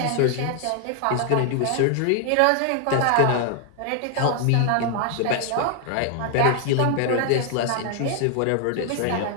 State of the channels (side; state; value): both; different; correlation 0.00